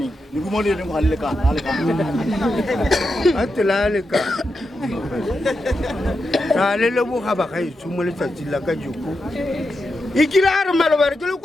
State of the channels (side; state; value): both; normal; correlation 0.87